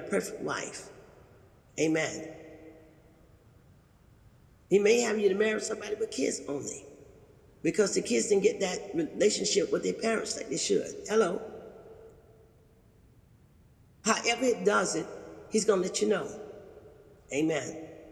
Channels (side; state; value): both; identical; correlation 1.00